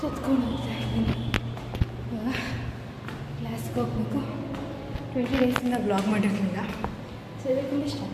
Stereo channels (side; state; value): both; identical; correlation 1.00